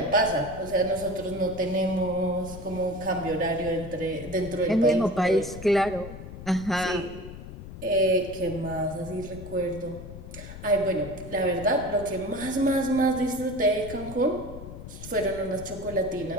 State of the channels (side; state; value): left; noise; rumble, 12 dB below the sound